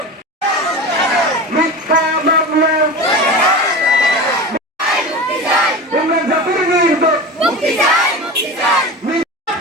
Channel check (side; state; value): both; normal; correlation 0.29